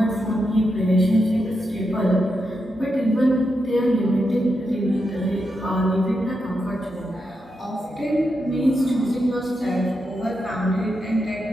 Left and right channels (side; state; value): both; normal; correlation 0.85